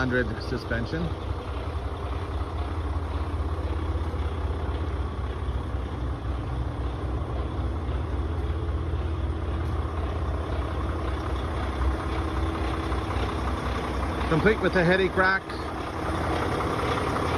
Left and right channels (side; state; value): both; identical; correlation 1.00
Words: suspension. Complete with the headache rack.